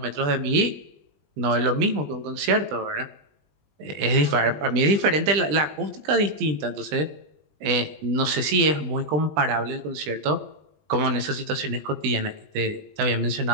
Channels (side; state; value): left; late; 20 ms